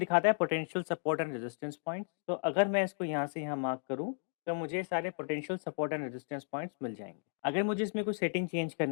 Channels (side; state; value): right; silent; digital silence